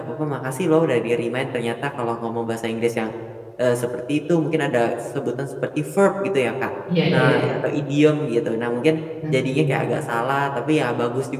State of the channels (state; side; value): identical; both; correlation 1.00